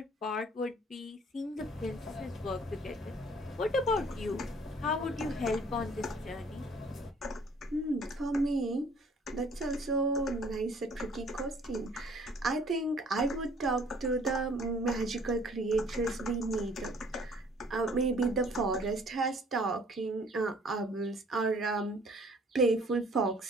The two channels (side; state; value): both; normal; correlation 0.56